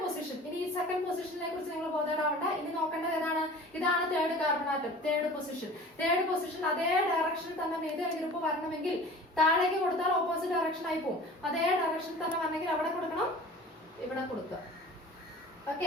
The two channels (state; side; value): normal; both; correlation 0.42